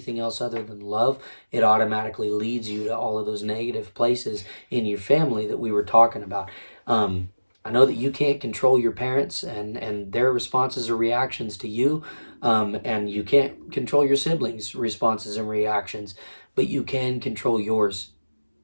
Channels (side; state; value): both; inverted; correlation -1.00